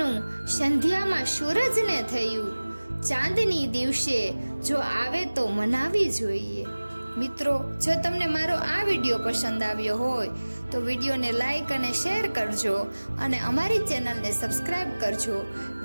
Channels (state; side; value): inverted; both; correlation -1.00